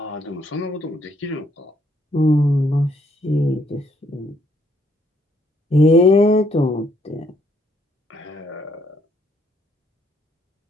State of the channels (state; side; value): normal; both; correlation 0.69